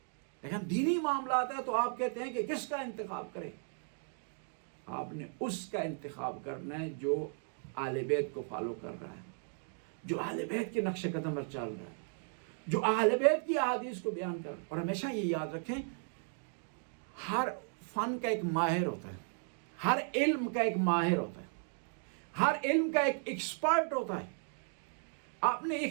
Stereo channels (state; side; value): silent; left; 54 dB below the other